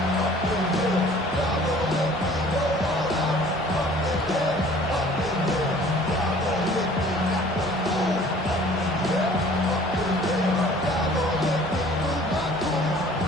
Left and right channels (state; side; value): noise; left; hum, 24 dB below the sound